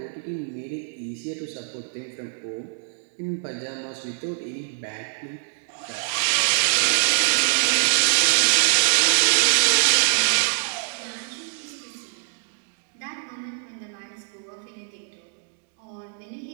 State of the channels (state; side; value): silent; left; digital silence